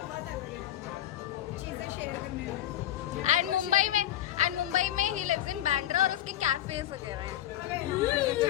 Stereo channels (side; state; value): right; quieter; 12.7 dB